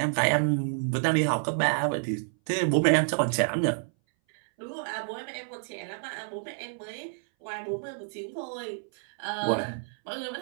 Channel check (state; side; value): silent; left; 59 dB below the other